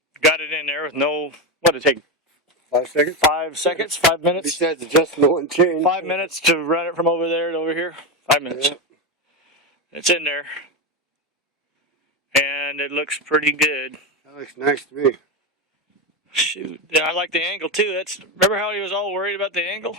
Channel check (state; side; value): normal; both; correlation 0.13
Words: got it in there with no, what did it take? 5 seconds? 5 seconds? 5 minutes? Besides adjustment and change. 5 minutes to run it from over there to over here? 5 minutes. Yeah. It's in there. And it looks pretty good. That looks nice to me. Shoot. Yeah, I like the angle too. Remember how he was all worried about the angle?